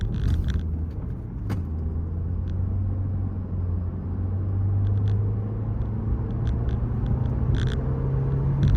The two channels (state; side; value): identical; both; correlation 1.00